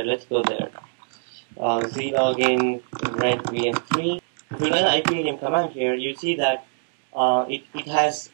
Let's go there. Zlogin red VM3. If you run the ipadm command here, you see that it has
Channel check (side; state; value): left; silent; digital silence